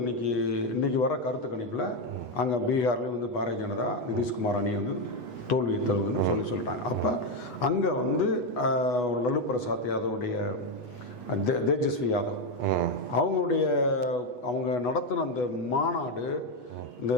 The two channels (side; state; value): right; late; 8.2 ms